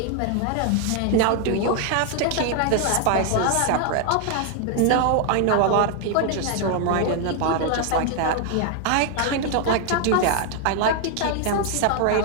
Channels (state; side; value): different; both; correlation 0.00